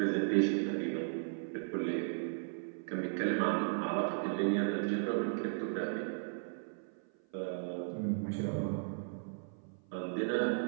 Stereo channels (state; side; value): silent; left; 54 dB below the other